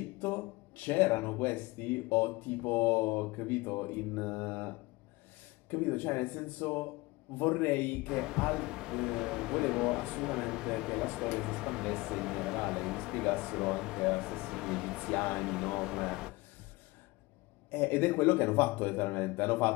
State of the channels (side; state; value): right; quieter; 22.5 dB